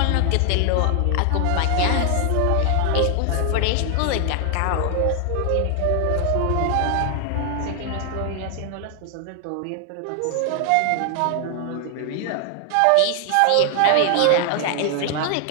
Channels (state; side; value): different; both; correlation 0.00